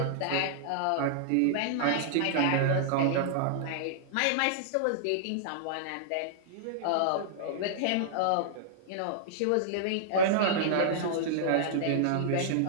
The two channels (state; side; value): different; both; correlation -0.01